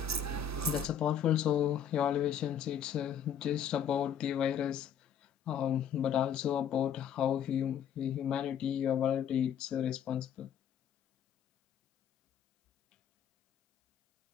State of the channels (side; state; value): right; quieter; 8.3 dB